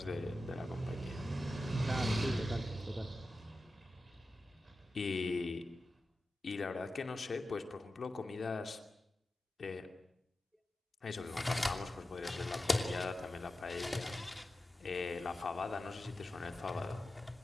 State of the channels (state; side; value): normal; both; correlation 0.93